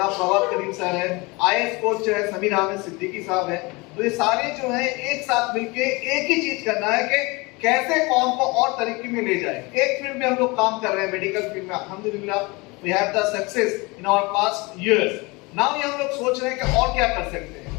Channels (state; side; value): quieter; right; 25.6 dB